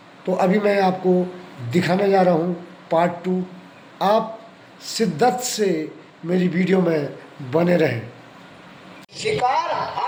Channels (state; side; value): identical; both; correlation 1.00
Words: तो अभी मैं आपको दिखाने जा रहा हूँ पार्ट 2। आप शिद्दत से मेरी वीडियो में बने रहें। शिकार